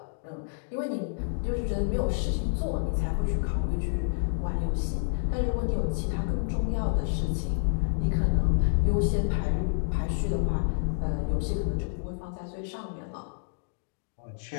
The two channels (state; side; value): silent; right; digital silence